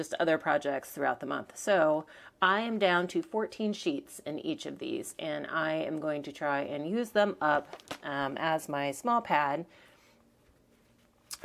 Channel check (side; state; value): both; identical; correlation 1.00